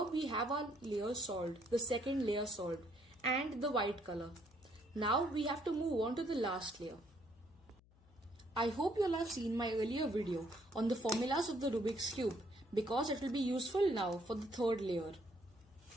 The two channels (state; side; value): noise; left; hum, 28 dB below the sound